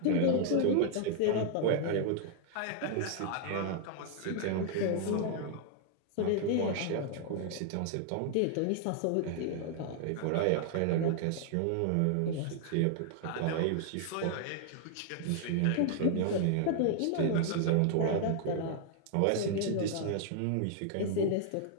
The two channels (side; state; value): both; different; correlation 0.00